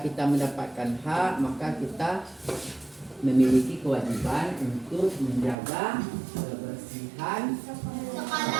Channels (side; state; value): left; drops out; at 5.6 s